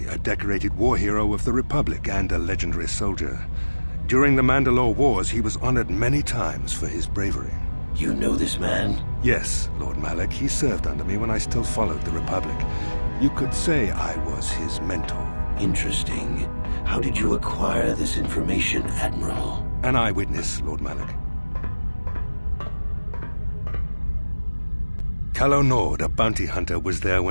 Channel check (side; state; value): both; inverted; correlation -1.00